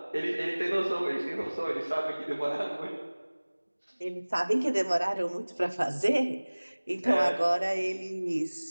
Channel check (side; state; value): both; inverted; correlation -1.00